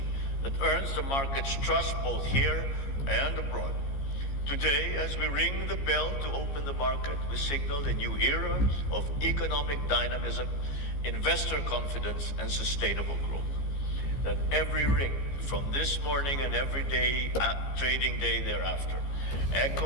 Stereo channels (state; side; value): late; right; 15 ms